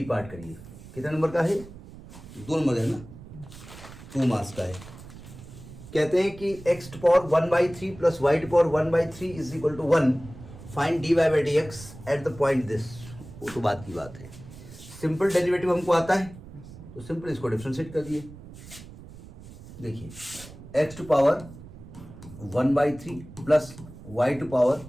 पार्ट करिए? कितने नंबर का है? 2 नंबर है ना, 2 मार्क्स का है। कहते हैं कि x to power 1/3 plus y to power 1/3 is equal to 1, find dy/dx at the point this. वो तो बात की बात है, सिंपल डेरिवेटिव हमको आता है तो सिंपल इसको डिफरेंशिएट कर दिए। देखिए x to power 1/3 plus y to power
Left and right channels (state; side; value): noise; right; rumble, 16 dB below the sound